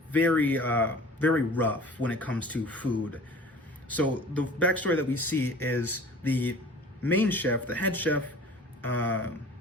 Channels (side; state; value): both; normal; correlation 0.44